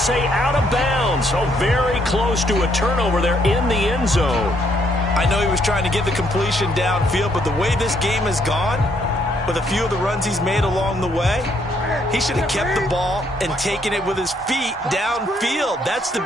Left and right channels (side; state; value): both; normal; correlation 0.70